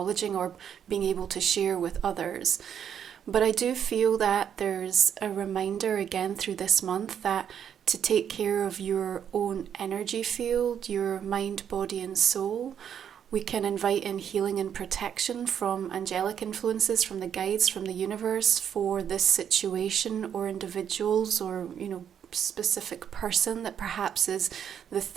or being able to share with others. But I do feel that there's a reminder again through this month that to take care of your own energy field, your mind, body and soul, we can invite in healing and protection from angelic influences, from the guides, from the universe for this situation or individuals, or, you know, specific person that perhaps is the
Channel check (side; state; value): left; quieter; 8.7 dB